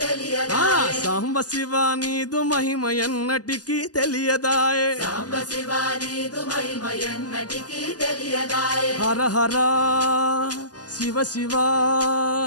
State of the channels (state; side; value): late; right; 0.68 ms